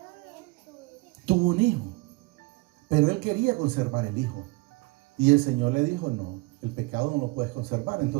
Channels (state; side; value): quieter; left; 24.7 dB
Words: tuvo un hijo, pero él quería conservar el hijo. Y el Señor le dijo, no, el pecado no lo puedes conservar.